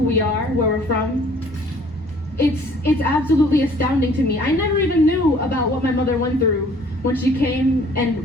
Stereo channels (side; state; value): both; normal; correlation 0.56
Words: are, where we're from. It's absolutely astounding to me. I never even knew about what my mother went through when she came